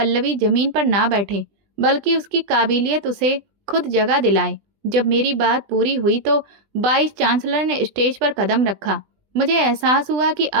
जमीन पर ना बैठे, बल्कि उसकी काबिलियत उसे खुद जगह दिलाए। जब मेरी बात पूरी हुई तो वाइस चांसलर ने स्टेज पर कदम रखा। मुझे एहसास हुआ कि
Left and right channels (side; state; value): left; late; 20 ms